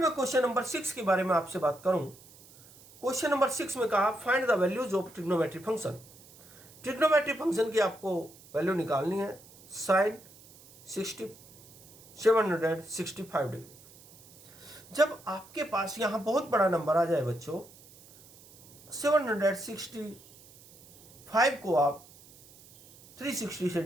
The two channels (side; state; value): right; noise; hiss, 23 dB below the sound